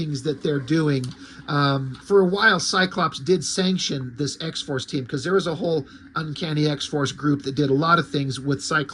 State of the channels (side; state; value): both; identical; correlation 1.00